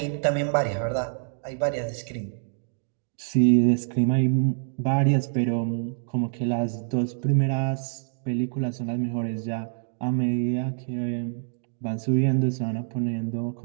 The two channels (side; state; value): left; silent; digital silence